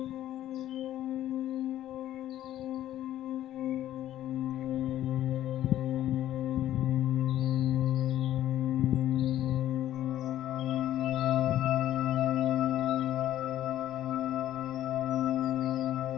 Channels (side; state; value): right; quieter; 12.7 dB